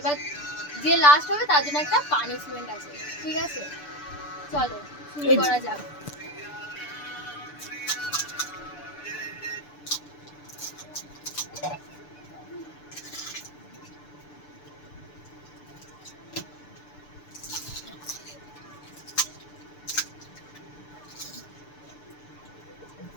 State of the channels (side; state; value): right; late; 6.8 ms